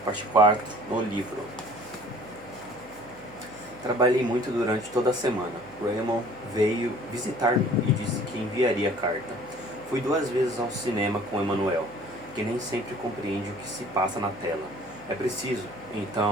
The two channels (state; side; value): noise; left; hum, 22 dB below the sound